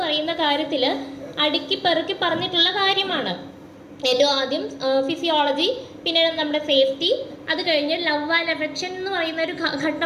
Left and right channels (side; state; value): both; identical; correlation 1.00